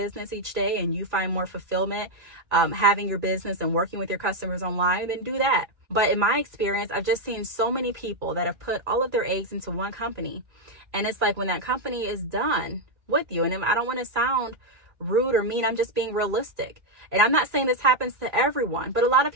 each day and you find more fulfillment having your business and working with your customers online, then do that. But in my experience, I've just seen so many people that have put all of their eggs into one company. And it's like when that company is done with you, and I don't want to sound rude or mean, I'm just being realistic. And I'm not saying this happens to everyone, but a lot of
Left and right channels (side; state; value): left; late; 2.4 ms